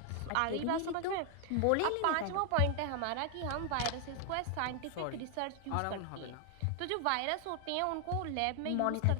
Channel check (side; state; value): both; different; correlation 0.00